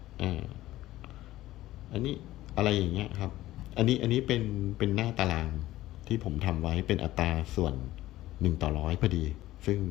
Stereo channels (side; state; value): right; quieter; 15.6 dB